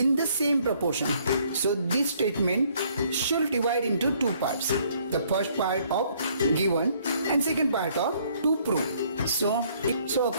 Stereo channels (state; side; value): inverted; both; correlation -0.64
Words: the same proportion. So this statement should divide into two parts. The first part of given and second part of to prove. So